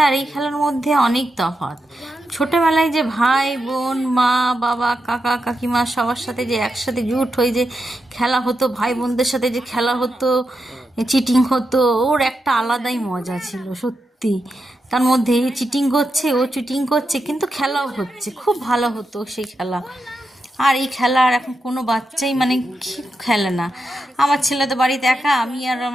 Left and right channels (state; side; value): normal; both; correlation 0.87